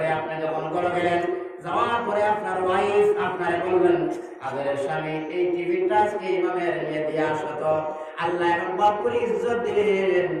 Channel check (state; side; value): identical; both; correlation 1.00